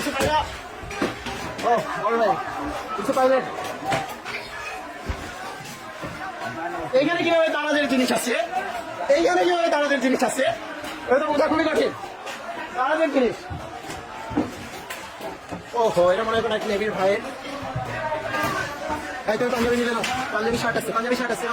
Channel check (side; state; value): both; identical; correlation 1.00